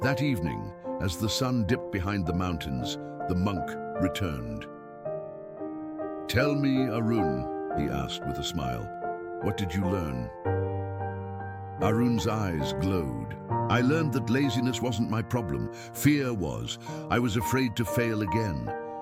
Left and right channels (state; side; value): identical; both; correlation 1.00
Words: That evening, as the sun dipped behind the mountains, the monk returned. "Tell me, Arun," he asked with a smile, "what did you learn?" Arun's eyes glowed. "I learned that laziness wasn't my problem. Fear was. I was afraid to fail again.